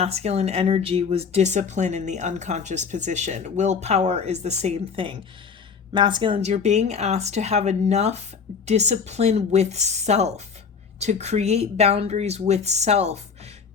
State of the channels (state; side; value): quieter; right; 5.9 dB